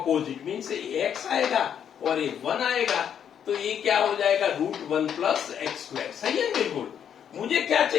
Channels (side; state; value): right; quieter; 8.7 dB